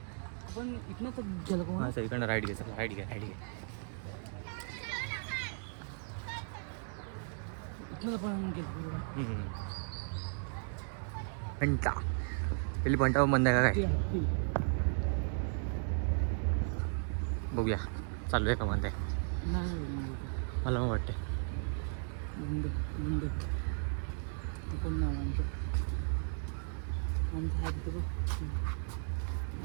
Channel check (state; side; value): silent; left; 54 dB below the other